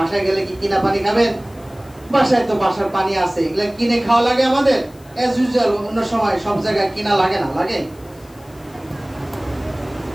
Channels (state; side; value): noise; left; hiss, 27 dB below the sound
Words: গেলে কি কিনা পানি খাবেন? বাসায় তো বাসার পানি আছে, এগুলো কিনে খাওয়া লাগে আমাদের। এজ ইউজুয়াল অন্য সময় সব জায়গায় কিনা লাগে না? লাগে।